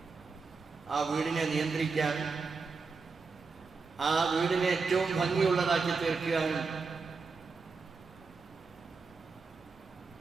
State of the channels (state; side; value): quieter; left; 4.6 dB